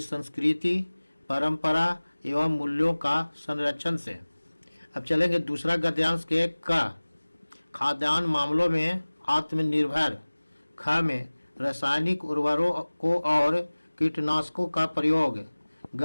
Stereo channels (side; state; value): both; inverted; correlation -1.00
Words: संस्कृति, परंपरा एवं मूल्यों का संरक्षण से। अब चलेंगे दूसरा गद्यांश के क। खाद्यान्न मामलों में आत्मनिर्भर। ख में रासायनिक उर्वरकों और कीटनाशकों का प्रयोग।